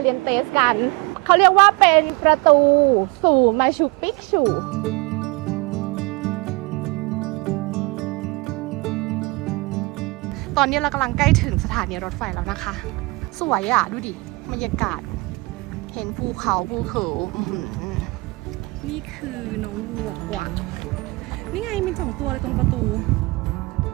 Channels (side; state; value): left; quieter; 24.9 dB